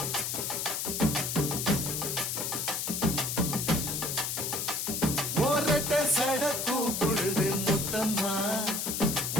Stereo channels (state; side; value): noise; left; hiss, 2 dB below the sound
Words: ஒரட்ட சட கூப்பிடுது முத்தம்மா,